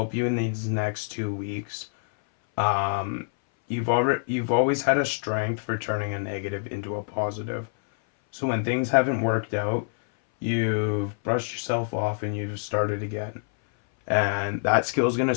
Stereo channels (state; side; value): silent; right; 59 dB below the other